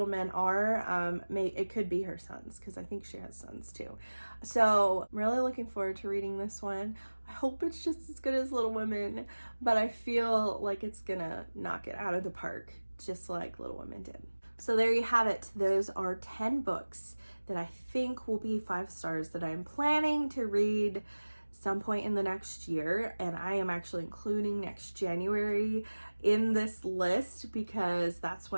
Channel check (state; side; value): inverted; both; correlation -1.00